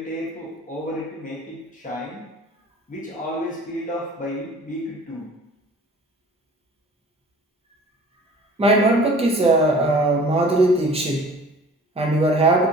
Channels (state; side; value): normal; both; correlation 0.47